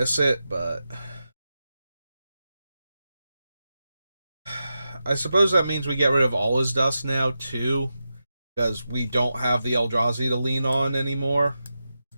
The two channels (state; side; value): inverted; both; correlation -0.90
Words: it, but I suppose that means we get rid of all his dust now too, because we don't have the Eldrazi to lean on anymore,